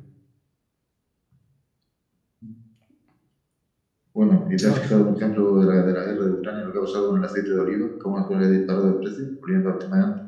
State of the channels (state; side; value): identical; both; correlation 1.00